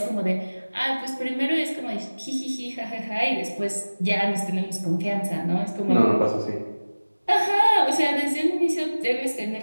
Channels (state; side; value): inverted; both; correlation -1.00